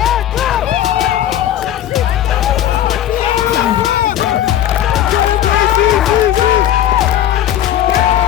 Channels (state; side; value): quieter; right; 11.4 dB